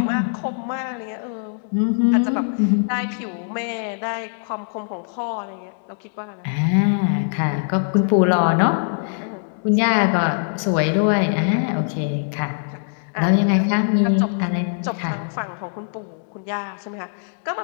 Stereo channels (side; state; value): right; silent; digital silence